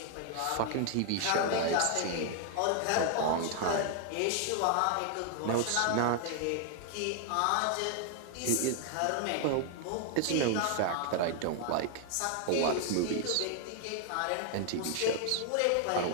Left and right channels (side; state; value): both; different; correlation 0.00